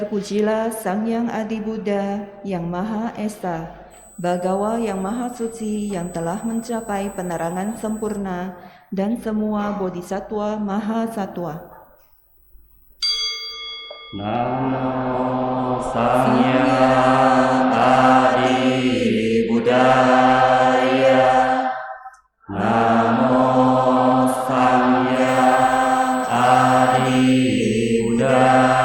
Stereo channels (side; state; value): both; identical; correlation 1.00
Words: Sang Yang Adi Buddha yang Maha Esa, Bhagawa yang Maha Suci yang telah mencapai penerangan sempurna dan semua bodhisattva Maha Satwa. Namo Sangyang Adi Buddhaya. Namo Sangyang Adi